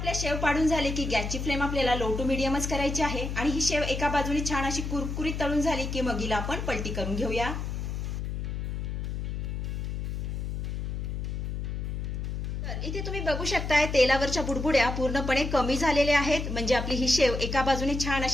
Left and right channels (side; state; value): left; noise; hum, 3 dB below the sound